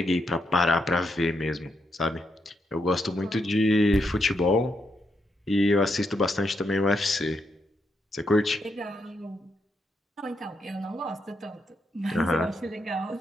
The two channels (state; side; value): normal; both; correlation 0.80